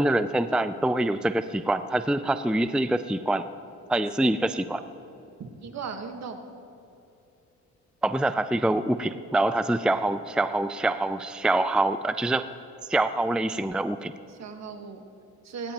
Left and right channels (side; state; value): both; normal; correlation 0.87